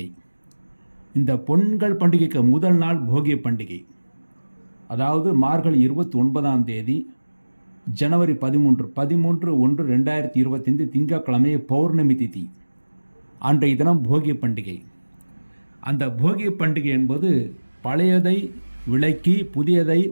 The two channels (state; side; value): inverted; both; correlation -1.00